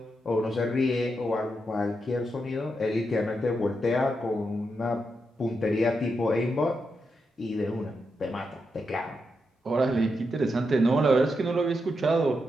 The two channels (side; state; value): both; normal; correlation 0.84